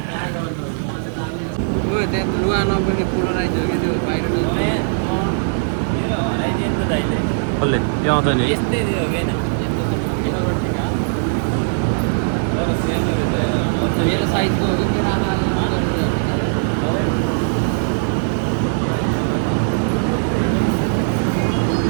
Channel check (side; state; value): left; silent; digital silence